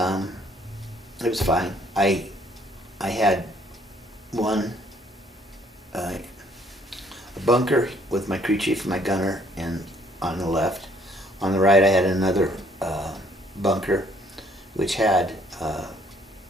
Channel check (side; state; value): both; normal; correlation 0.63